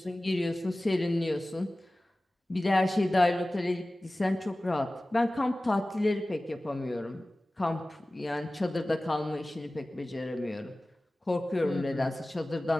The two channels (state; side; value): normal; both; correlation 0.97